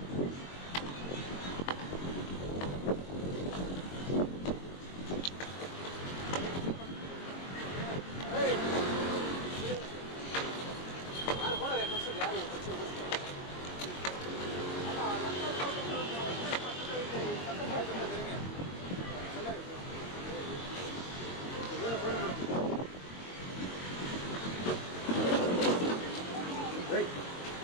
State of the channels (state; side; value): late; right; 22 ms